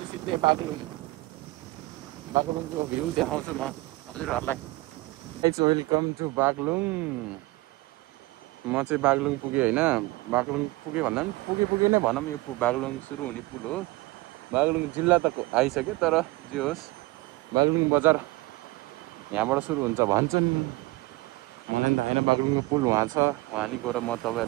सिधै बागलुङको भ्यू देखाउँछु म हजुरहरूलाई। Welcome to Baglung. म चाहिँ बागलुङ पुगेँ होइन। बागलुङ पुगेँ भन्दा पनि पुगे नै भनौँ, यो बागलुङ सुरु हुने पुल हो। बागलुङ जिल्ला त आइसक्यो, तर जे होस् बागलुङ बजार यहाँबाट सुरु हुन्छ भन्छन्। होइन बागलुङको पुल वहाँ छ, वहाँ नि गएर म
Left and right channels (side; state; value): left; quieter; 21.2 dB